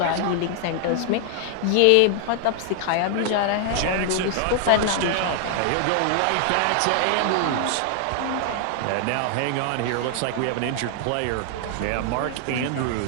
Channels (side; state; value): both; different; correlation 0.00